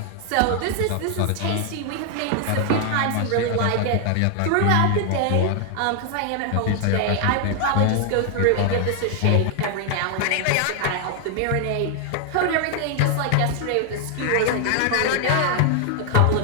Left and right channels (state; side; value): different; both; correlation 0.00